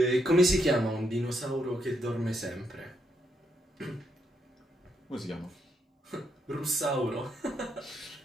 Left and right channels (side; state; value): both; normal; correlation 0.78